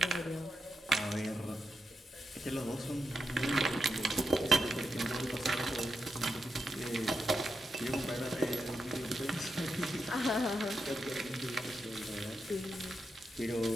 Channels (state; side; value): normal; both; correlation 0.86